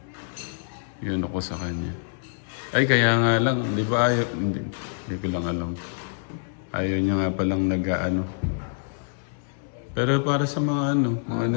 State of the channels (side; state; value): right; silent; digital silence